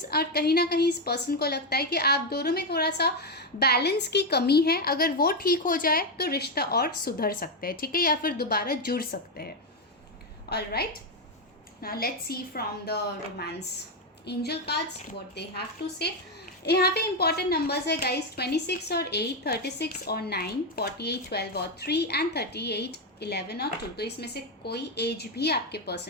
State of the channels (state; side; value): normal; both; correlation 0.07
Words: और कहीं ना कहीं इस पर्सन को लगता है कि आप दोनों में थोड़ा सा बैलेंस की कमी है। अगर वो ठीक हो जाए तो रिश्ता और सुधर सकते हैं, ठीक है, या फिर दोबारा जुड़ सकते हैं। All right, now let's see from the romance angel cards what they have to say. यहाँ पे इंपॉर्टेंट नंबर्स है गाइस 26 और 8, 36 और 9, 48, 12 और 3 एंड 38, 11 और 2। तो इसमें से कोई एज भी आपके